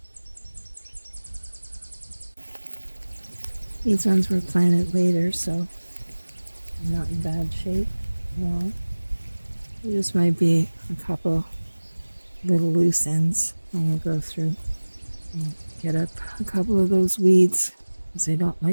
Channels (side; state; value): both; inverted; correlation -1.00